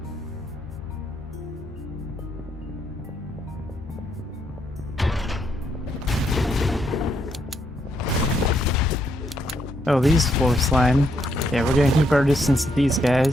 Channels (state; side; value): normal; both; correlation 0.76